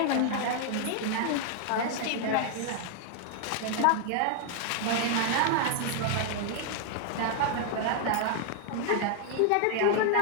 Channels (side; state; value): both; different; correlation 0.00